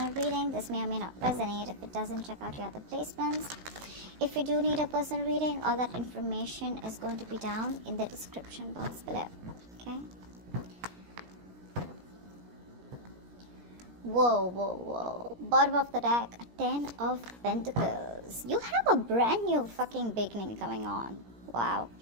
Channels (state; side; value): late; left; 17 ms